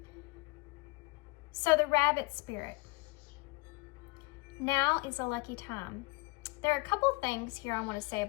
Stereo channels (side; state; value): right; quieter; 25.6 dB